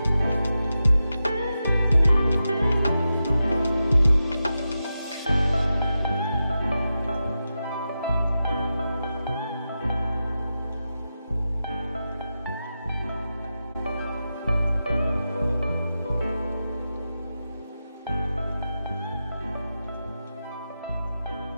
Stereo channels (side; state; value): both; inverted; correlation -0.90